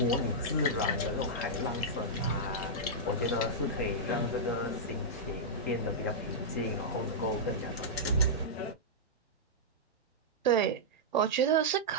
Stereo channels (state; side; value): normal; both; correlation -0.11